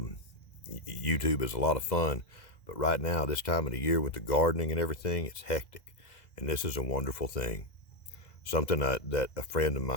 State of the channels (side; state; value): right; late; 2.0 ms